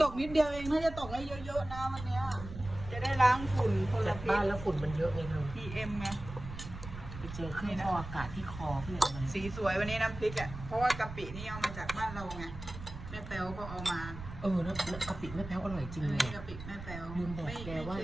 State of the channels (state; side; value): noise; right; rumble, 11 dB below the sound